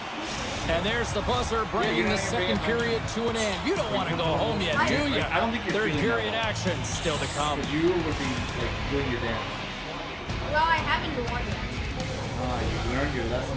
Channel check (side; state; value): both; identical; correlation 1.00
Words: And there's the buzzer bringing the second period to an end. You don't want to go home yet, do you? I don't think you're Third feeling period that action still to come. Because you would be like doing your dance. Well, I haven't won yet. You learned your lesson